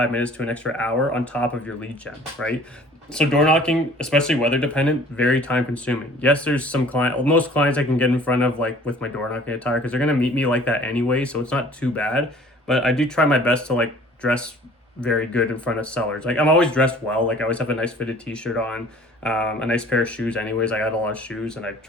minutes to an extra hour on top of your lead gen, right? So door knocking, especially weather dependent, very time consuming. Yes, there's most clients I can get in front of like with my door knocking attire because they're going to meet me like that anyway, so it's not too bad. But I do try my best to like dress very good in front of sellers. Like I'm always dressed well. Like I always have a nice fitted t-shirt on, a nice pair of shoes anyways. I got a lot of shoes and I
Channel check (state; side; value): normal; both; correlation 0.50